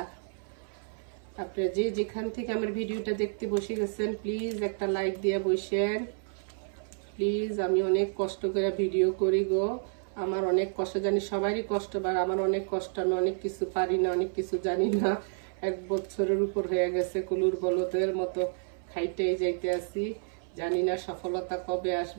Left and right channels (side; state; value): left; silent; 58 dB below the other